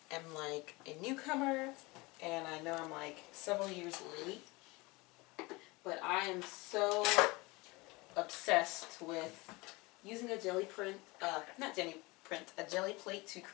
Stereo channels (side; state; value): right; quieter; 23.9 dB